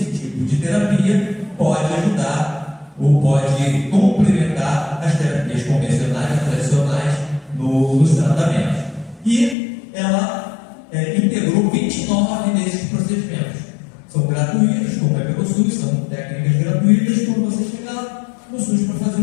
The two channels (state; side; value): drops out; right; at 9.6 s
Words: tipo de terapia pode ajudar ou pode complementar as terapias convencionais, tradicionais, nos tratamentos. E ela integrou 29 desses procedimentos. São gratuitos, como é pelo SUS, são técnicas gratuitas. Quando você chegar no SUS para fazer